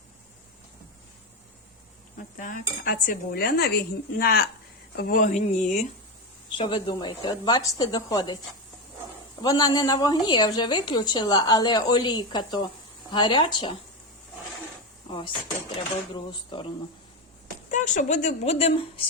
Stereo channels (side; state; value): both; normal; correlation 0.14